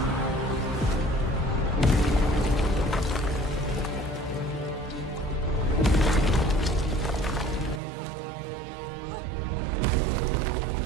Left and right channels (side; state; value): left; drops out; at 7.8 s